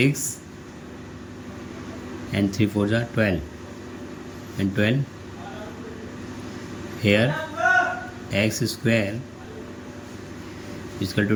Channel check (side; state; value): both; identical; correlation 1.00